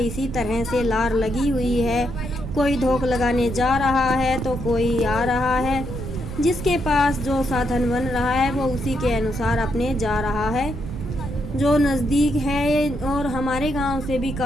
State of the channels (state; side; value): noise; right; rumble, 8 dB below the sound